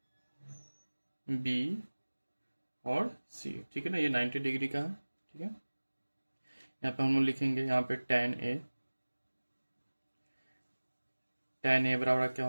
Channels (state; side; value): inverted; both; correlation -1.00